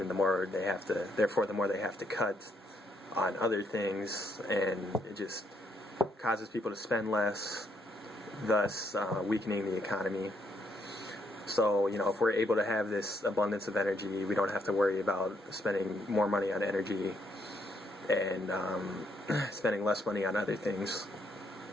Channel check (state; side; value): normal; both; correlation 0.73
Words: and the more they have to cut on other things, and it just causes people to spend less, thus weakening the economy. So, if we're able to have this abundance of energy, we don't have to worry about spending more money on energy and spending less money on other things